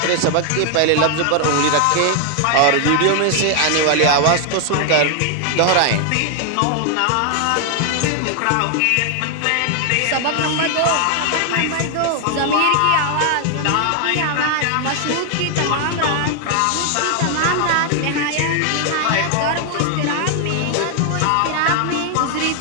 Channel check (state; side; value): different; both; correlation 0.00